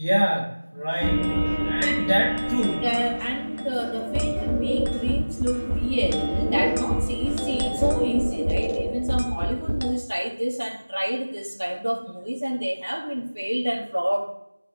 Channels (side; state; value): both; inverted; correlation -1.00